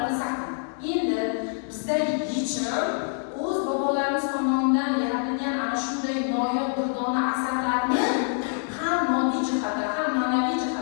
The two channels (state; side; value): silent; right; 61 dB below the other